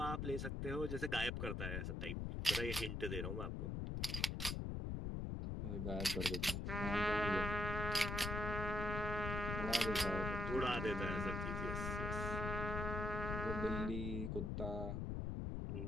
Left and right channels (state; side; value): noise; left; rumble, 1 dB below the sound